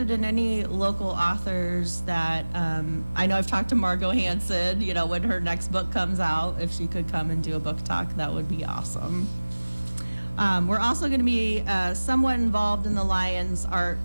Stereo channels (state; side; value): inverted; both; correlation -1.00